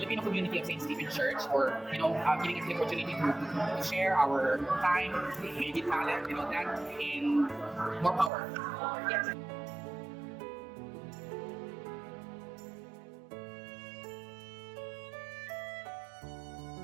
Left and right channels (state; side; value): drops out; left; at 8.3 s